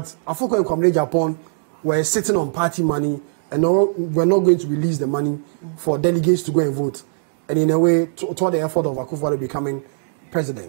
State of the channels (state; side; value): silent; left; digital silence